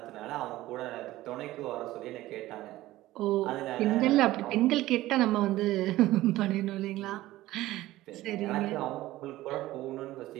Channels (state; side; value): quieter; left; 16.4 dB